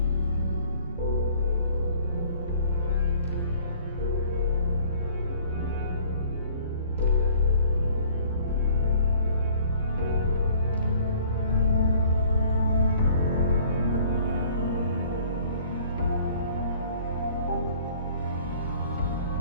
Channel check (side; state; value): both; inverted; correlation -0.54